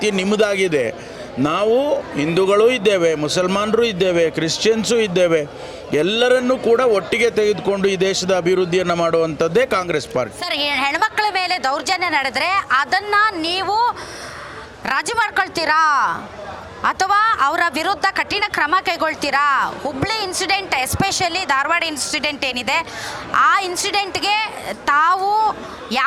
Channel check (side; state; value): both; identical; correlation 1.00